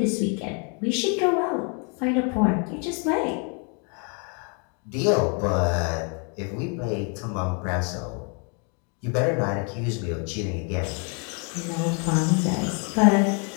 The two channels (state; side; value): quieter; right; 37.1 dB